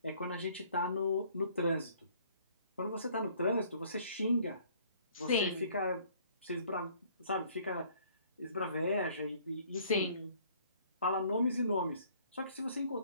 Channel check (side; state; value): both; inverted; correlation -0.58